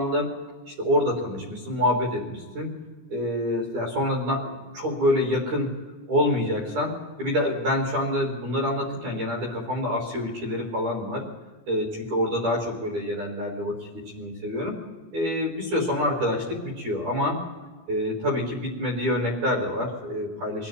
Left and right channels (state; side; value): late; left; 17 ms